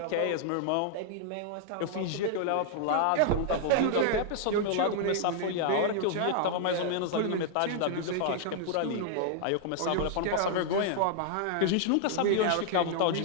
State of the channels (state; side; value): different; both; correlation 0.00